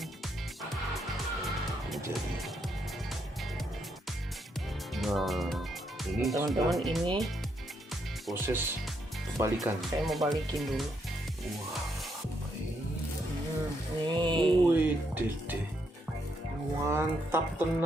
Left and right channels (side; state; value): both; normal; correlation 0.77